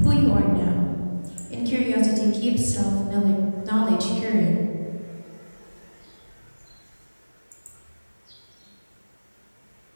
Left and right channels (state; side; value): inverted; both; correlation -1.00